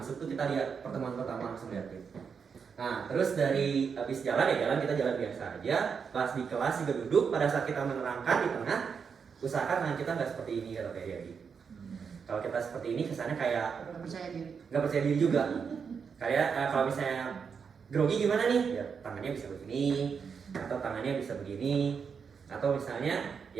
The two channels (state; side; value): quieter; left; 6.2 dB